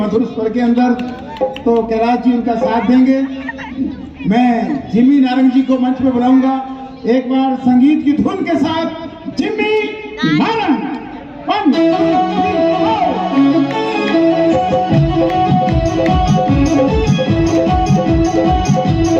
स्वर के अंदर, तो कैलाश जी उनका साथ देंगे। मैं जिम्मी नारंग जी को मंच पे बुलाऊंगा एक बार संगीत की धुन के साथ। जिम्मी नारंग, 1 2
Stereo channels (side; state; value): both; identical; correlation 1.00